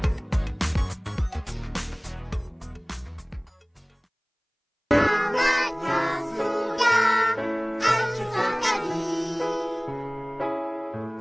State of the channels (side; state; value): both; identical; correlation 1.00